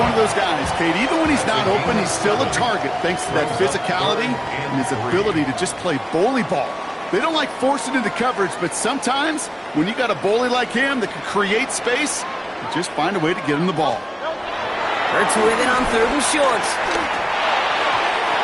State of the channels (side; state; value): both; identical; correlation 1.00